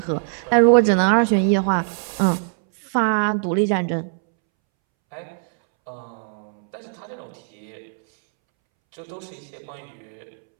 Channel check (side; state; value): left; silent; 64 dB below the other